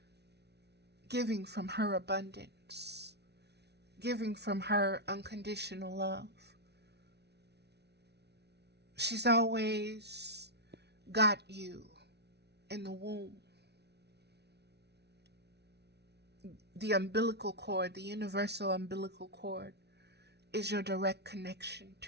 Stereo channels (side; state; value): left; late; 0.49 ms